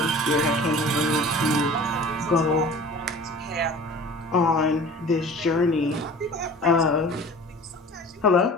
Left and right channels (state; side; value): normal; both; correlation 0.43